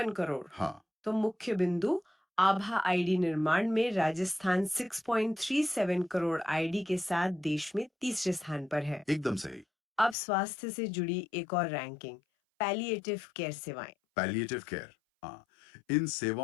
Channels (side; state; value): right; drops out; at 10.2 s